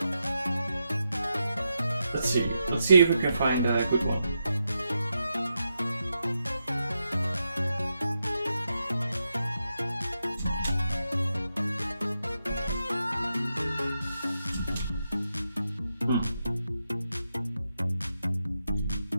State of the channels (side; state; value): both; inverted; correlation -0.86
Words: Let's see if we can find a good one.